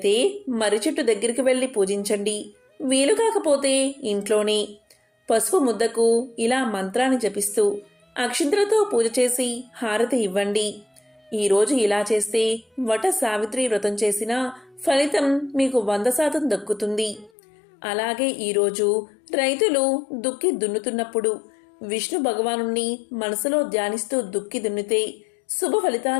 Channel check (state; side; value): drops out; right; at 17.3 s